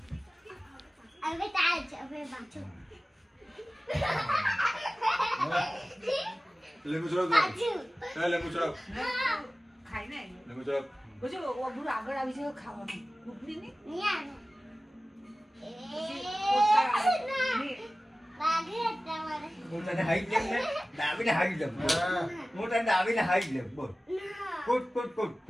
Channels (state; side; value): normal; both; correlation 0.97